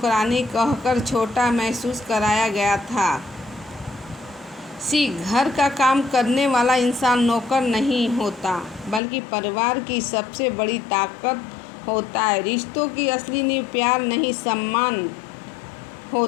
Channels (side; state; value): right; drops out; at 9.0 s